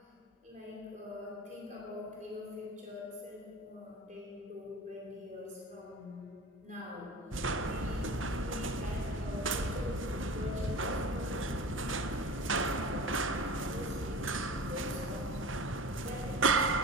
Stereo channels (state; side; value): normal; both; correlation 0.35